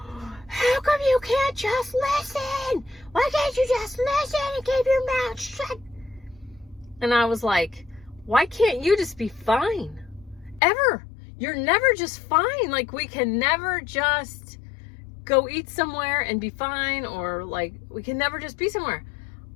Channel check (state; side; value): drops out; right; at 10.6 s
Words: how come you can't just listen? Why can't you just listen and keep your mouth shut? And I was like, why can't you just be fine? Ever. You're never just fine. Like, we can never just go eat somewhere and be fine, or like, we can never just be somewhere.